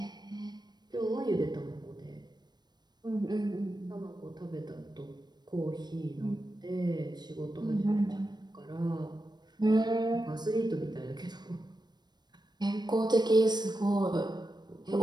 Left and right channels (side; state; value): left; late; 0.20 ms